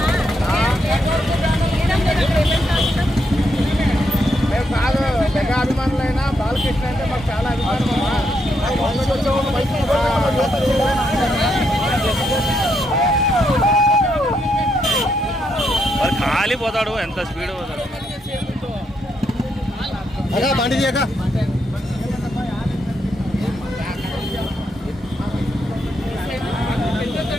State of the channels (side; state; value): both; normal; correlation 0.78